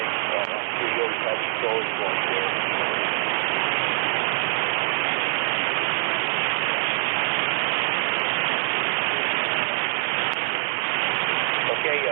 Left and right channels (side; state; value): left; silent; 62 dB below the other